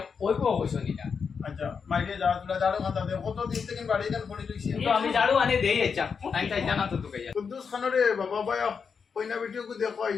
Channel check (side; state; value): right; quieter; 6.0 dB